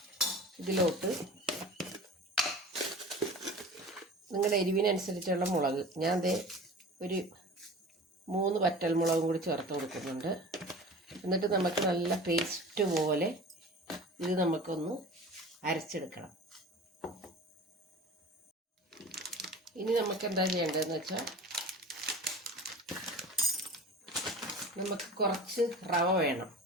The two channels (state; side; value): normal; both; correlation 0.38